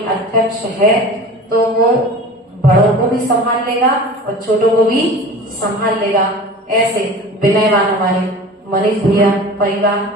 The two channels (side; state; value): both; normal; correlation 0.38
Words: अध्यक्ष है तो वो बड़ों को भी संभाल लेगा और छोटों को भी संभाल लेगा। ऐसे विनयवान हमारे मनीष भैया, परिवार,